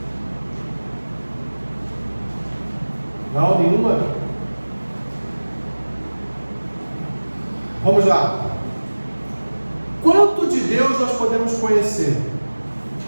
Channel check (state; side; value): inverted; both; correlation -1.00